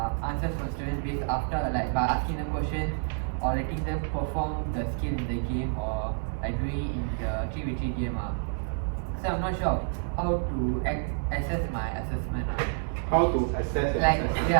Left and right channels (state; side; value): silent; left; 59 dB below the other